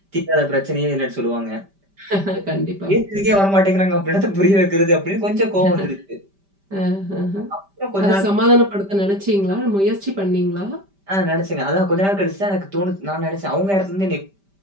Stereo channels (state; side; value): late; left; 5.1 ms